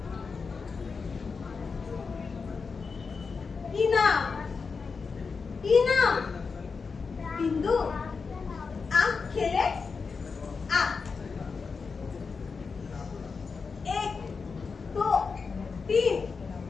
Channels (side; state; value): right; quieter; 5.0 dB